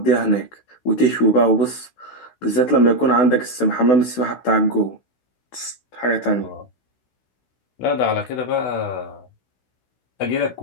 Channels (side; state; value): right; late; 16 ms